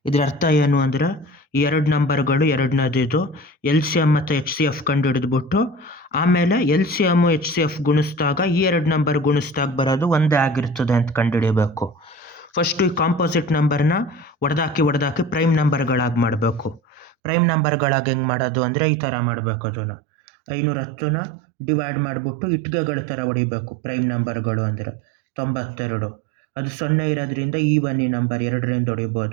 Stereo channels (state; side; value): drops out; left; at 17.2 s